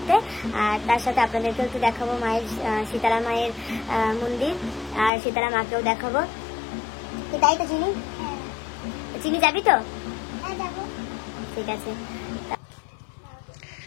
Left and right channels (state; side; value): drops out; right; at 5.1 s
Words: আর তার সাথে আপনাদেরকেও একটু দেখাবো মায়ের শীতলা মায়ের মন্দির, আর শীতলা মাকেও দেখাবো। তাই তো চিনি, চিনি যাবি তো? ঠিক আছে।